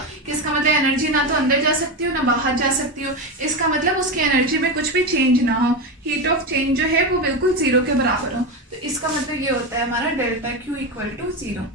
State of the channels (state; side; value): normal; both; correlation 0.16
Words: कि इसका मतलब एनर्जी ना तो अंदर जा सकती हो ना बाहर जा सकती हो, इसका मतलब उसकी एनर्जी में कुछ भी चेंज ना हो, हीट ऑफ चेंज जो है वो बिल्कुल जीरो के बराबर हो। तो इसका मतलब ये होता है हमारा delta Q equal to zero.